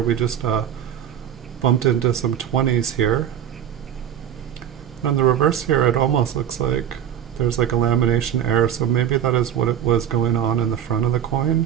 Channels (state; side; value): quieter; left; 9.7 dB